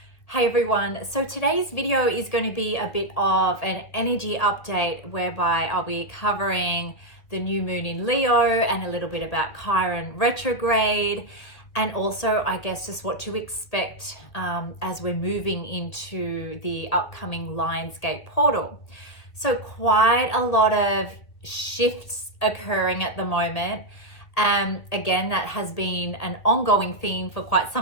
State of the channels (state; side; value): late; right; 2.1 ms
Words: Hey everyone, so today's video is going to be a bit of an energy update whereby I'll be covering the new moon in Leo and a little bit about Chiron Retrograde, and also I guess just what to expect as we're moving into the upcoming Lionsgate portal. So quite a lot of shifts occurring at the moment. Again, that has been an ongoing theme for quite